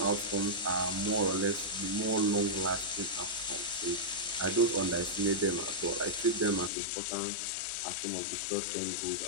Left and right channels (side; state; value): right; drops out; at 6.7 s